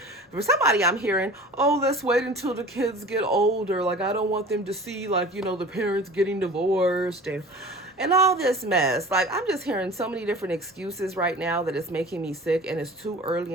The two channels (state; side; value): normal; both; correlation 0.40